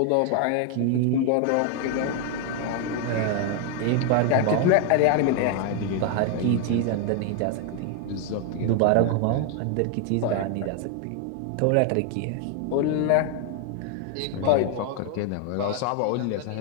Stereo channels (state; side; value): different; both; correlation 0.01